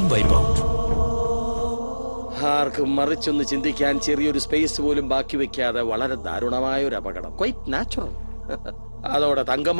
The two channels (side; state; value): both; inverted; correlation -1.00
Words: wipe out. ആർക്കും മറിച്ചൊന്ന് ചിന്തിക്കാൻ ചെറിയൊരു സ്പേസ് പോലും ബാക്കി വെക്കാതെ വളരെ ദാരുണമായ ഒരു അപകടം. Quite natural. അതോടെ